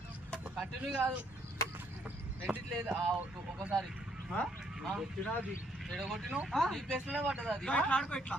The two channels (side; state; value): both; normal; correlation 0.70